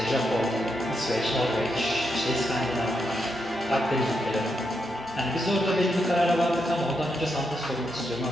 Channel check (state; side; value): normal; both; correlation 0.82